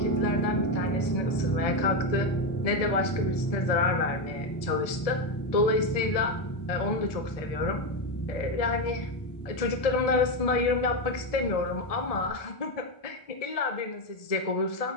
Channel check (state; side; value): late; right; 1.7 ms